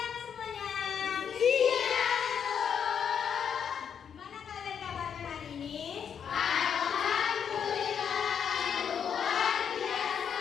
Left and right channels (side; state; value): right; quieter; 7.8 dB